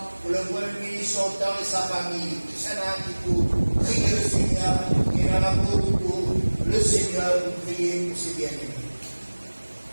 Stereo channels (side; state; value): both; inverted; correlation -1.00